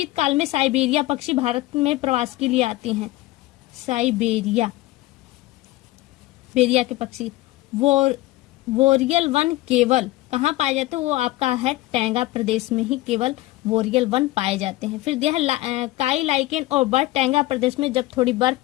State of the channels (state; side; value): quieter; right; 17.9 dB